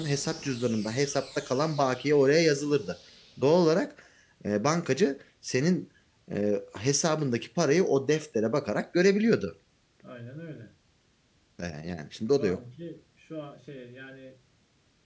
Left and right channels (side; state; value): both; identical; correlation 1.00